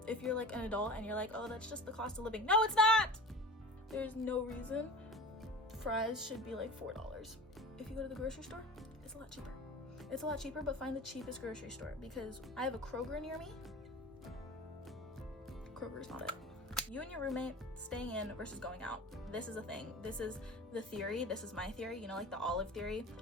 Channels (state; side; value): normal; both; correlation 0.35